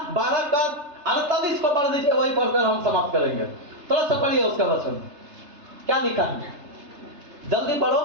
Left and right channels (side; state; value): left; late; 3.3 ms